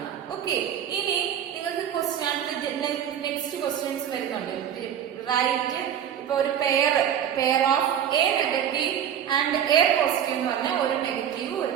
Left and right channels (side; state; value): left; quieter; 9.4 dB